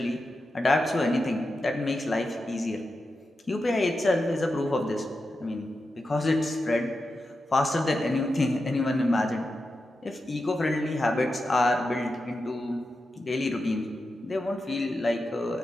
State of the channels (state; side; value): normal; both; correlation 0.90